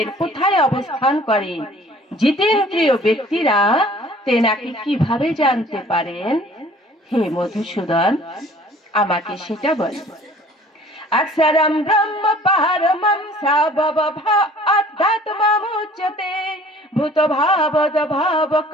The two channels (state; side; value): normal; both; correlation 0.51